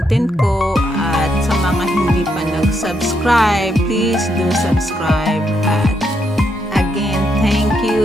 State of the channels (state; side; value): normal; both; correlation 0.78